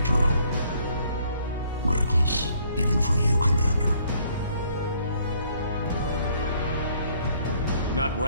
drone. Reckless, even for you, Commander. Not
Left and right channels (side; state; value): both; inverted; correlation -0.64